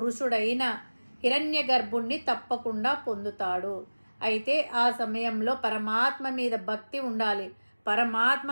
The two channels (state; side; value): inverted; both; correlation -1.00